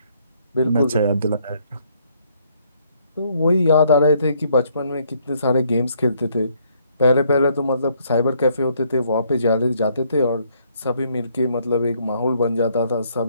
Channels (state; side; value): inverted; both; correlation -0.68